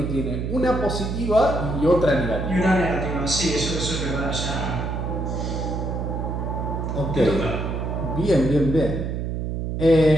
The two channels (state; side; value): noise; right; hum, 3 dB below the sound